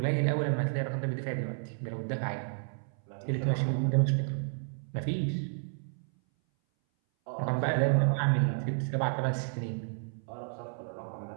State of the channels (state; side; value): silent; left; 57 dB below the other